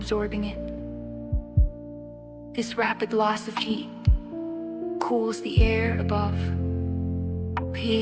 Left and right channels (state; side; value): identical; both; correlation 1.00